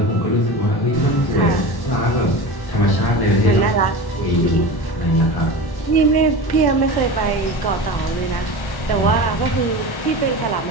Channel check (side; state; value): right; late; 1.1 ms